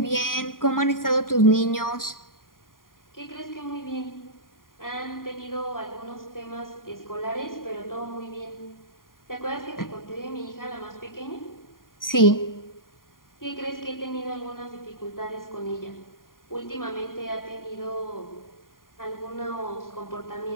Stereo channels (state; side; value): late; right; 0.91 ms